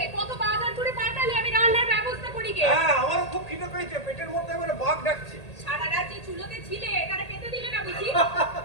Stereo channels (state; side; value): late; right; 1.8 ms